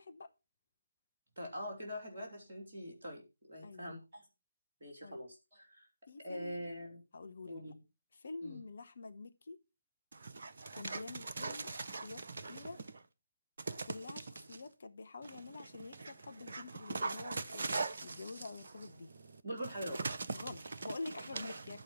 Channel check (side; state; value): both; inverted; correlation -0.86